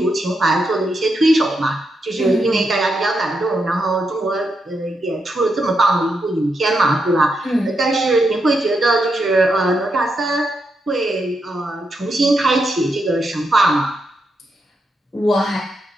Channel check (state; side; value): normal; both; correlation 0.83